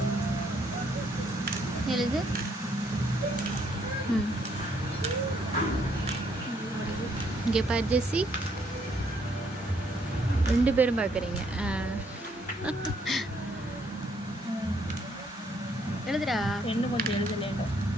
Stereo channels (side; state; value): both; normal; correlation 0.69